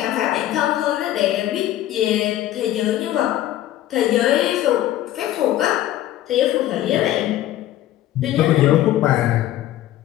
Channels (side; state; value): right; quieter; 13.5 dB